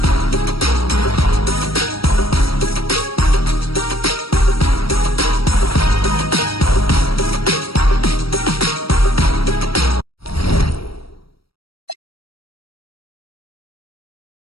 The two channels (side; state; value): right; late; 0.75 ms